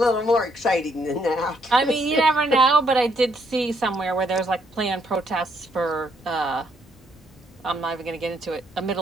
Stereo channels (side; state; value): both; normal; correlation 0.72